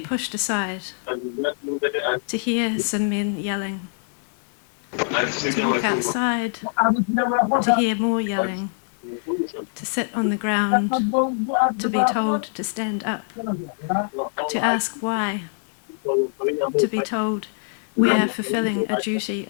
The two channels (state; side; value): silent; right; 62 dB below the other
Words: pushed aside, to hear some men yelling, to walk outside, to hear more yelling, to sit on the ground, to be told to stand up, to ask why, to be told we are fulfilling a duty